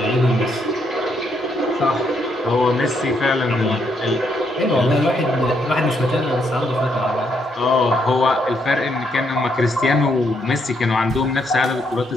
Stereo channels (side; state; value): both; normal; correlation 0.75